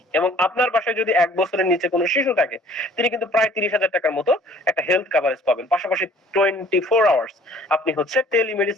এবং আপনার বাসায় যদি 1 বছরের নিচে কোনো শিশু থাকে, তিনি কিন্তু প্রায় 30,000 টাকার মতো একটা হেলথ কভারেজ পাবেন। পাশাপাশি 24 আওয়ার্স আপনি হচ্ছে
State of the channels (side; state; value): both; normal; correlation 0.54